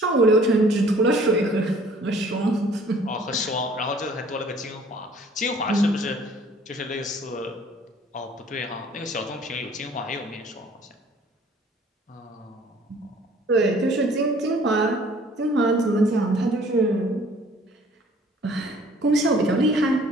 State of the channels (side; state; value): both; normal; correlation 0.55